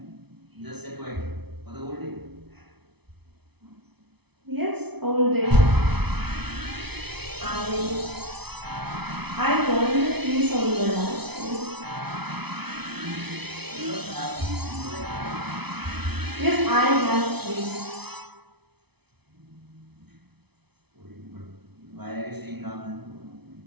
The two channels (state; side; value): late; left; 0.99 ms